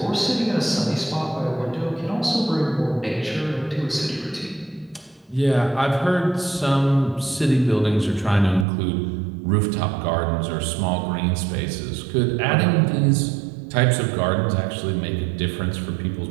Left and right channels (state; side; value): drops out; left; at 8.7 s